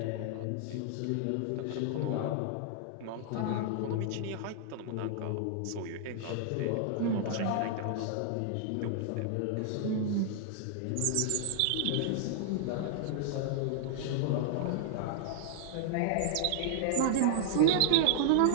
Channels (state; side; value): different; both; correlation -0.01